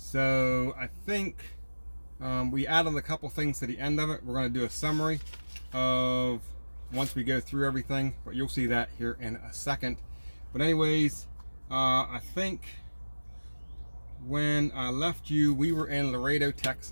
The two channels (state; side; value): inverted; both; correlation -1.00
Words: I think we added a couple things to the end of it. We're going to do a summary of once we go through everything, but you'll see that here in a second. But anyways, I think when I left you, we were in Laredo,